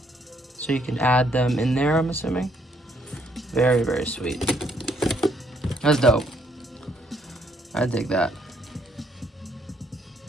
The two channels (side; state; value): both; normal; correlation 0.70